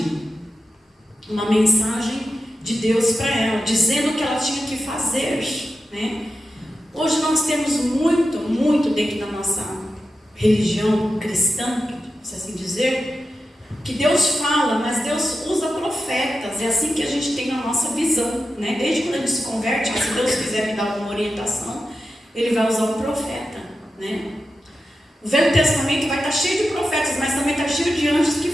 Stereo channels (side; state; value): both; normal; correlation 0.91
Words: de Deus para ela, dizendo o que ela tinha que fazer, né? Hoje nós temos muito dentro da nossa religião cristã, se assim dizer, que Deus fala, mas Deus usa profetas. É assim que a gente tem na nossa visão, né? Desde quando a gente se converte, se Deus quiser me dar alguma orientação, Ele vai usar um profeta, né? O Velho Testamento vai estar cheio de profetas, mas também está cheio de anjos que